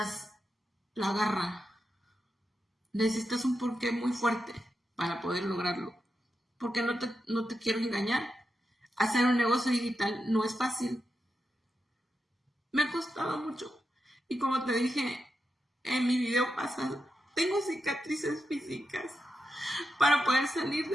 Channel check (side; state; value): both; normal; correlation 0.87